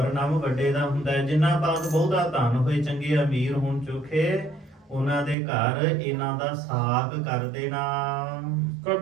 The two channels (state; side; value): drops out; left; at 5.4 s